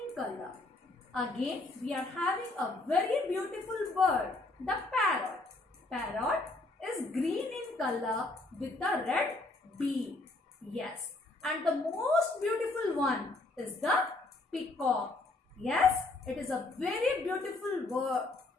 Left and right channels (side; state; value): right; quieter; 3.0 dB